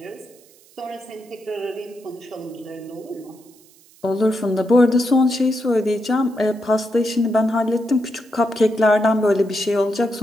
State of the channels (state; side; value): noise; right; hiss, 28 dB below the sound